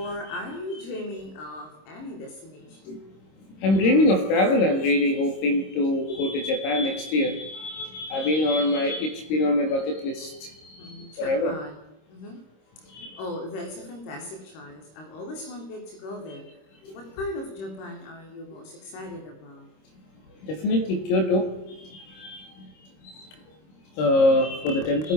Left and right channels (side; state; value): right; late; 26 ms